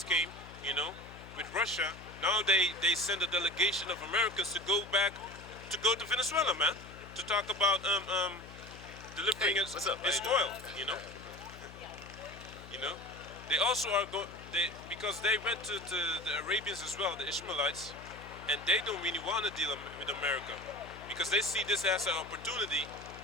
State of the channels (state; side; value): noise; left; hum, 16 dB below the sound